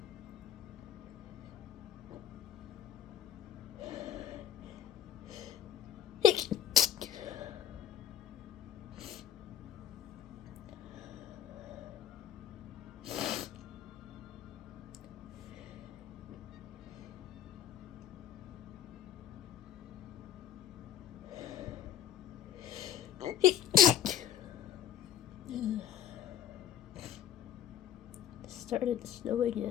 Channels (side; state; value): right; quieter; 10.3 dB